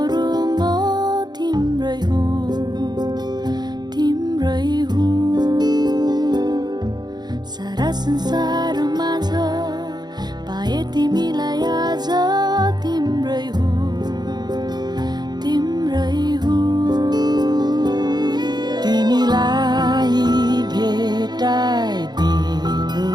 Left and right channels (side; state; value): left; late; 0.20 ms